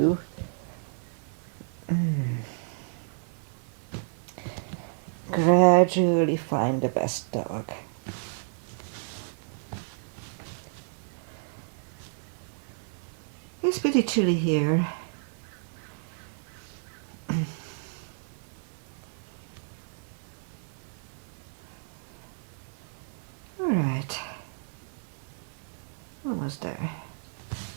Gradually find the best dog. It's pretty chilly here. All right. Almost there.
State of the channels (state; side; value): silent; left; 57 dB below the other